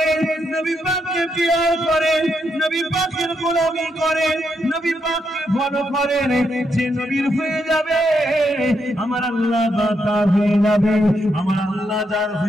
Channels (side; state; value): both; normal; correlation 0.80